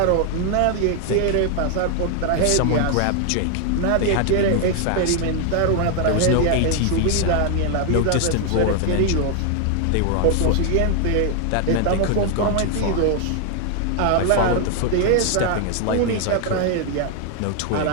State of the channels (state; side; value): different; both; correlation 0.00